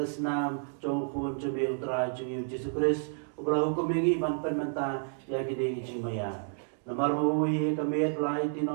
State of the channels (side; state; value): left; silent; digital silence